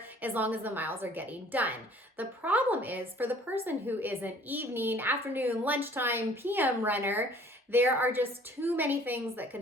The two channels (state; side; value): normal; both; correlation 0.53